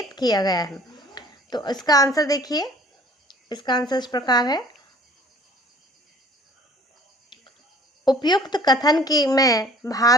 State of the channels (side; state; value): both; normal; correlation 0.52